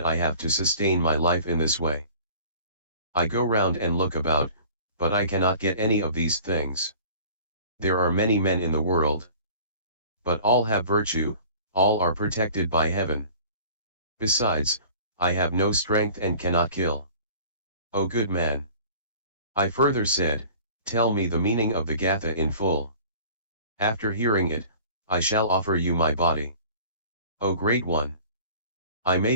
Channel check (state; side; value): inverted; both; correlation -0.46